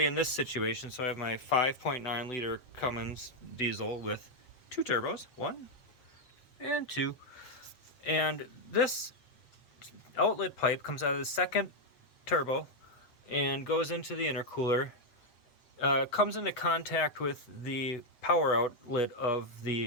in this situation, so I have my 5.9 liter Cummins diesel with two turbos, 1 and 2, and this outlet pipe comes out of the second turbo and goes into the intercooler, comes into contact with the power outlet of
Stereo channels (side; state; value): right; late; 8.0 ms